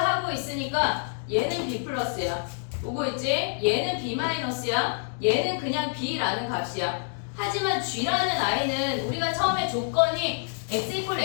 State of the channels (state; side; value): silent; right; 55 dB below the other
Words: 있으니까 얘는 b 플러스야. 오고 있지? 얘는 b 마이너스야. 얘는 그냥 b라는 값이야. 하지만 g라는 i는 우리가 처음에 조건이 x 이퀄